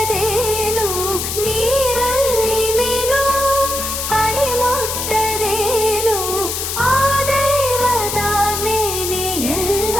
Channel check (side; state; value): left; noise; hiss, 3 dB below the sound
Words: ನೀರಲ್ಲಿ ಮೀನು ಅಡಿ ಮುಟ್ಟದೇನು, ಆ ದೈವದಾಜ್ಞೆನೇ